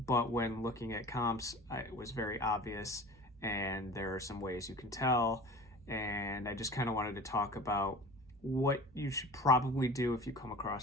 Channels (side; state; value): both; normal; correlation 0.39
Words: when looking at comps, it was very obvious, and there are some ways you can tell. And I just kind of wanted to talk about what you should probably do if you come